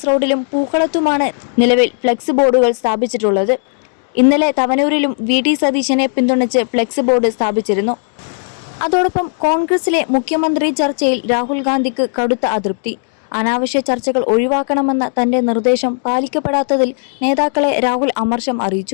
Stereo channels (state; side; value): silent; right; digital silence